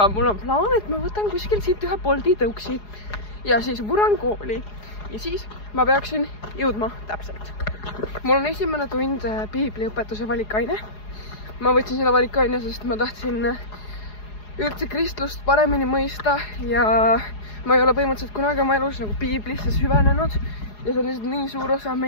mul on plaan, et ma võtan kuskil siit ühe Bolti tõuksi ja siis vuran kooli. Ja siis ma peaksin jõudma täpselt. Mul on esimene tund piibliõpetuse valikaine. Ma võtsin seda valikaine, sest ma tahtsin üldse kristlust paremini mõista ja ma ei ole põhimõtteliselt kunagi oma elus nagu piiblisse süvenenud ja see on lihtsalt nii suur osa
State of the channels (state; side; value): late; right; 4.8 ms